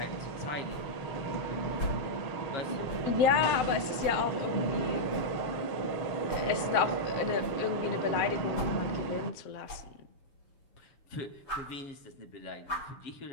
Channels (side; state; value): right; late; 7.7 ms